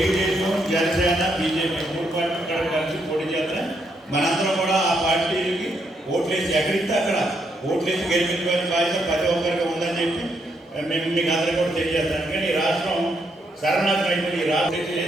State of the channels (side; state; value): both; normal; correlation 0.76